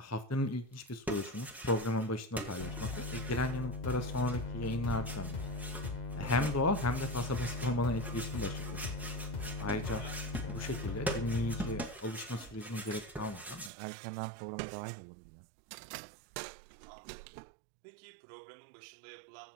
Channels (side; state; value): left; drops out; at 13.7 s